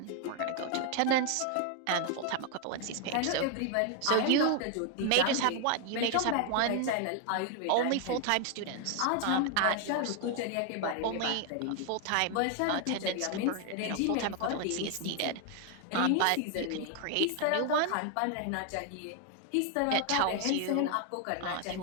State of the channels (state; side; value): different; both; correlation 0.01